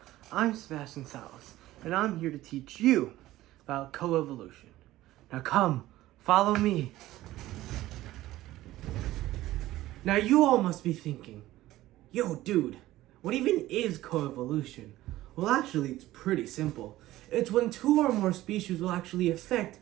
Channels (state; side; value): quieter; left; 15.9 dB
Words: I'm Sebastian Salas, and I'm here to teach you about coevolution. Now come, follow me. Now you all must be thinking, yo dude, what even is coevolution? Well actually it's pretty simple. It's when two or more species will actually affect